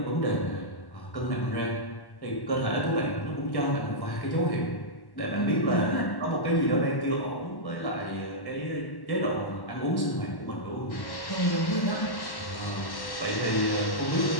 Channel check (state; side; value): late; right; 1.1 ms